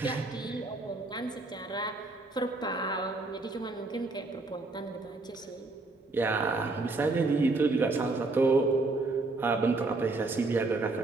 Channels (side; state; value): left; quieter; 3.3 dB